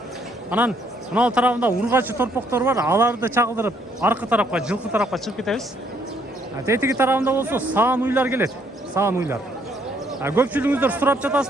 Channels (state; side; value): normal; both; correlation 0.68